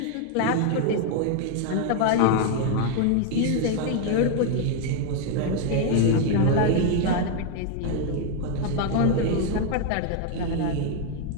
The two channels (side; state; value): both; different; correlation 0.00